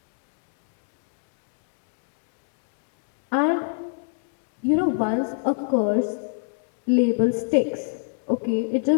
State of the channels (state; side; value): silent; right; 61 dB below the other